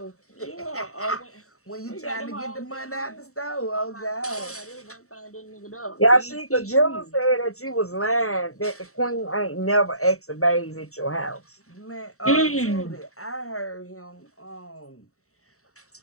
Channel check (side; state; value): right; late; 0.64 ms